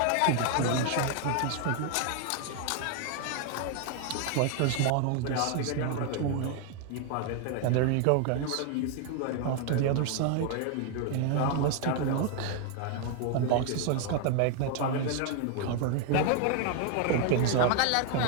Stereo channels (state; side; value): different; both; correlation 0.00